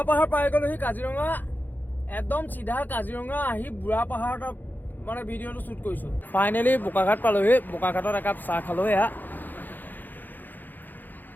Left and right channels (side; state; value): right; late; 0.087 ms